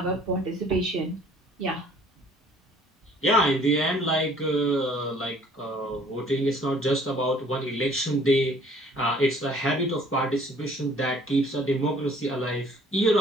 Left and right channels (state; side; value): normal; both; correlation 0.56